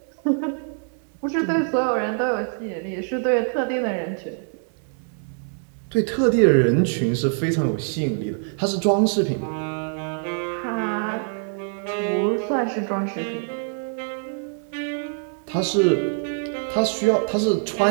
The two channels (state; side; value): silent; left; 58 dB below the other